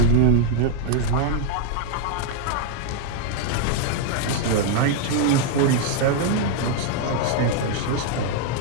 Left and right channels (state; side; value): different; both; correlation 0.00